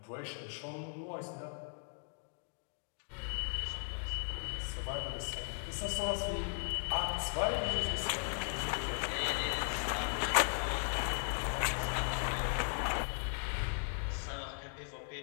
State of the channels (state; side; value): silent; right; 53 dB below the other